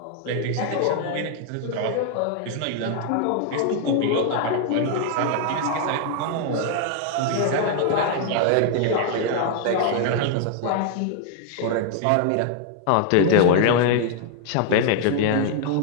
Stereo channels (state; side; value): different; both; correlation 0.00